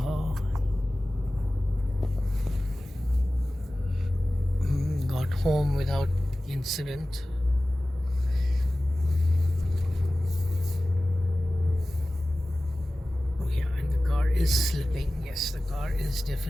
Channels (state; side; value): normal; both; correlation 0.97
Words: Got home without incident. Oh yeah, and the car is slipping. Yes, the car is